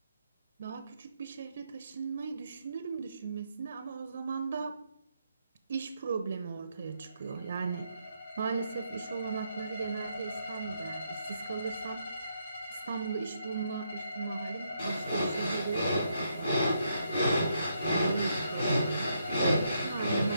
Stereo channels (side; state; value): both; inverted; correlation -0.77